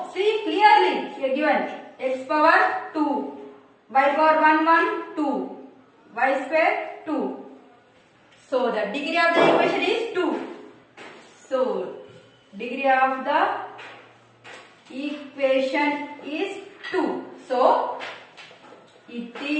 See clearly here given x power 2, y power 1, 2, y square 2. So the degree of the equation is 2. So degree of the equation is 2. So it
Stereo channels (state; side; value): identical; both; correlation 1.00